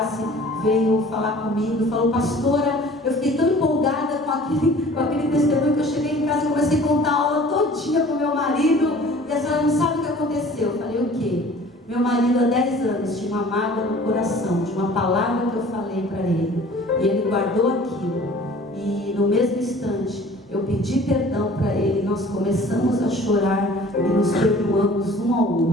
veio falar comigo e falou: pastora, eu fiquei tão empolgada com aquele testemunho que eu cheguei em casa e comecei a contar a aula todinha para o meu marido, e a senhora não sabe o que aconteceu. Eu falei: o quê? Meu marido há 10 anos tinha uma mágoa no coração de uma palavra que eu falei para ele, e ele guardou aquilo. E no mesmo instante, eu pedi perdão para ele, nós começamos a chorar e nos perdoamos um ao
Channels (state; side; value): normal; both; correlation 0.48